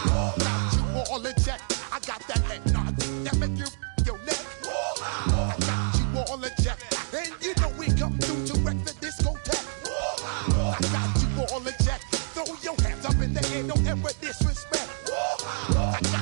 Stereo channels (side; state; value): left; silent; digital silence